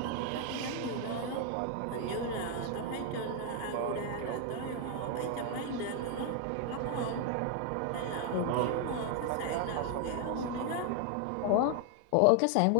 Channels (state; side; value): different; both; correlation 0.00